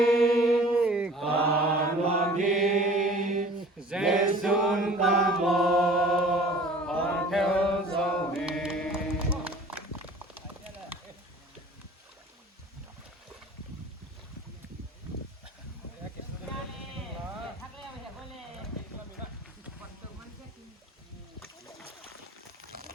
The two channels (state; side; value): normal; both; correlation 0.47